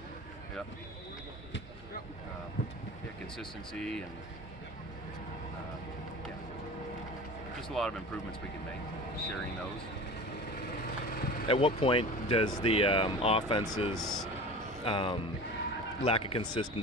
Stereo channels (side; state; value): both; normal; correlation 0.36